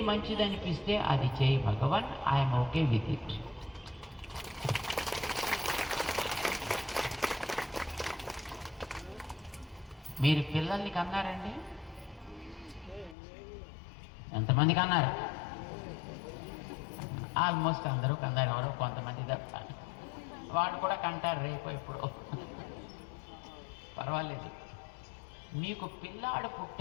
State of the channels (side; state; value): right; drops out; at 13.2 s